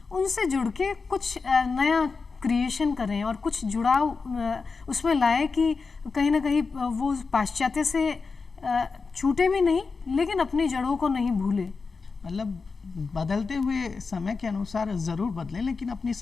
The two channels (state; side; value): quieter; right; 4.6 dB